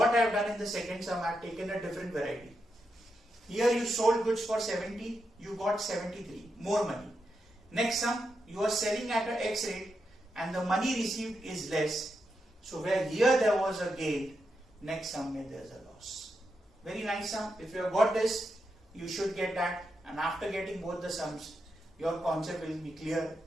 I have done in the second sum, I have taken a different variety. Here you sold goods for 70, you got 73, more money. Next sum, you are selling at an X rate and the money received is less. So where here there was a gain, next sum there is a loss. Very nice sum. If you have got this, you should get that, and after getting both the sums, your concept will be clear.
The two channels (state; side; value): normal; both; correlation 0.85